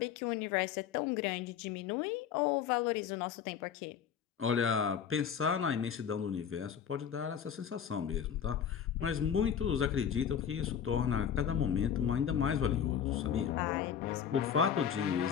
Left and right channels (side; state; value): right; quieter; 8.3 dB